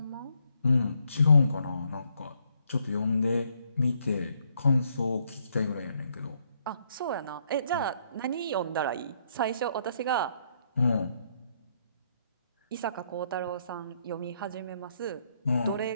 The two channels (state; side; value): inverted; both; correlation -0.72